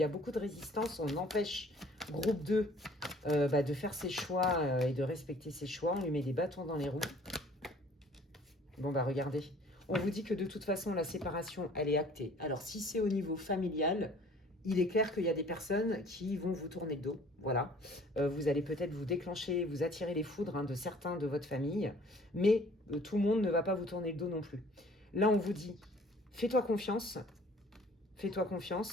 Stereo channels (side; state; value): both; normal; correlation 0.53